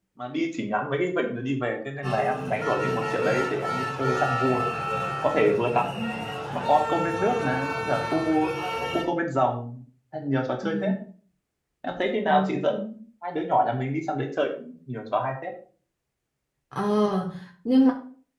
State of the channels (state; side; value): identical; both; correlation 1.00